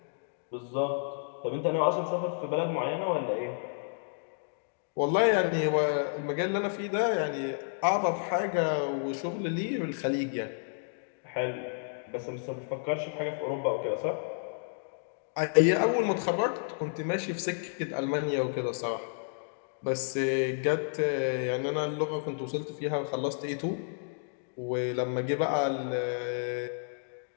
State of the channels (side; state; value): right; silent; digital silence